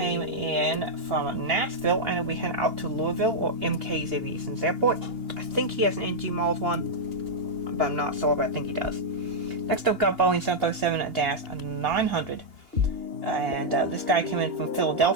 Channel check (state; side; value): late; left; 2.8 ms